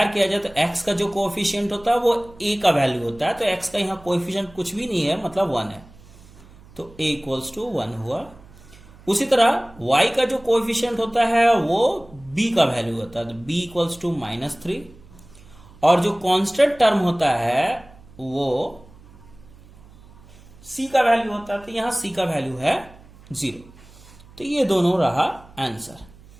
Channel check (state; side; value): noise; right; hum, 23 dB below the sound